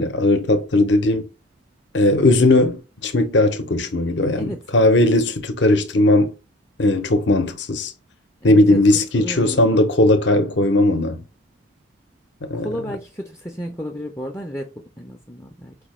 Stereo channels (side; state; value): both; normal; correlation 0.44